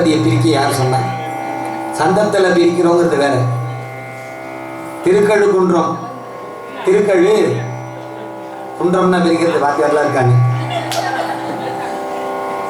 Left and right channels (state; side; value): identical; both; correlation 1.00